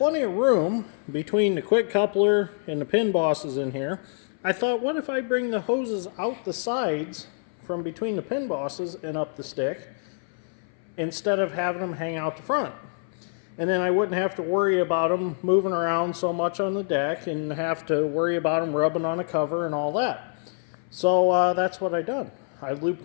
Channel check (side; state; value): right; silent; 59 dB below the other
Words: of room between the quick coupler and the pin bosses in here. I thought, what if I bring the hoses out the sides from between the pin bosses and up the stick instead of having them hang out the front? And then I wouldn't have to worry about them moving around so much on the deck and have to worry about them rubbing on a cover and all that. So that's what I done. I looped